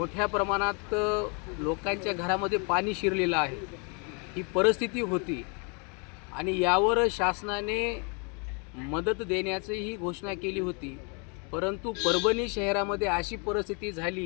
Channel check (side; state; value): right; quieter; 34.9 dB